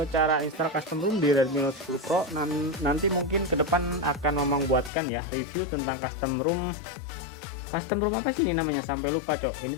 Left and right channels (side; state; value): right; drops out; at 4.9 s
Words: cara install custom ROM di Redmi Note 10 Pro. Nanti mungkin ke depan akan membuatkan ya review tentang custom ROM. Custom ROM apa sih ini namanya? Sampai lupa cok. Ini